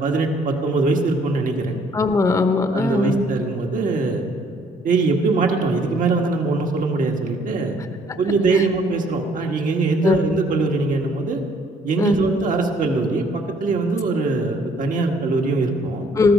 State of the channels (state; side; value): normal; both; correlation 0.62